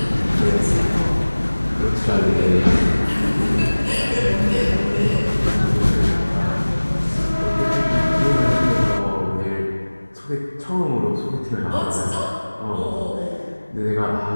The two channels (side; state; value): both; inverted; correlation -1.00